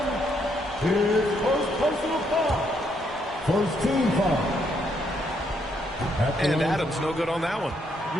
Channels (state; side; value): normal; both; correlation 0.74